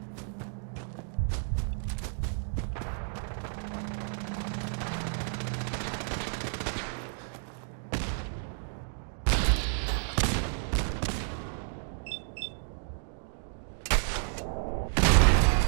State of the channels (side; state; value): left; silent; 57 dB below the other